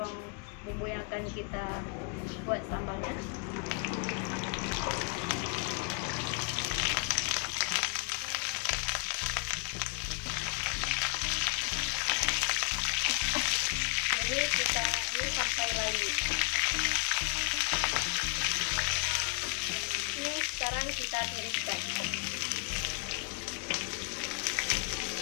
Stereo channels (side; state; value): right; quieter; 33.7 dB